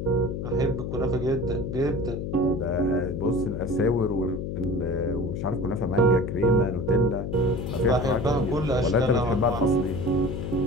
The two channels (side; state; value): left; noise; hum, 4 dB below the sound